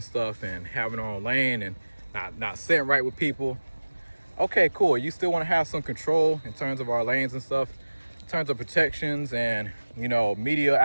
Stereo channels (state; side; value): inverted; both; correlation -1.00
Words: stuff and having our own lane and not sitting right with people. Okay, cool. You still want to have some control in terms of our lanes and stuff, in terms of protections and media